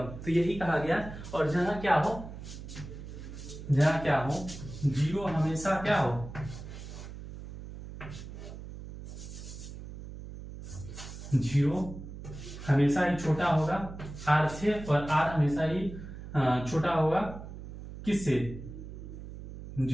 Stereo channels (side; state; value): right; noise; hum, 11 dB below the sound